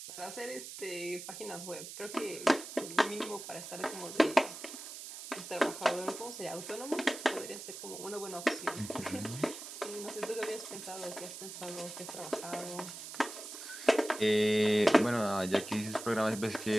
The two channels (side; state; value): right; noise; hiss, 10 dB below the sound